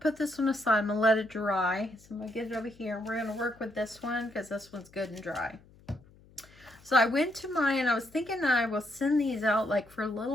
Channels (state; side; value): noise; left; hum, 26 dB below the sound